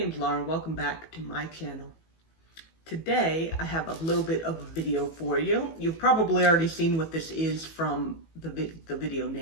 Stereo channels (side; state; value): right; late; 18 ms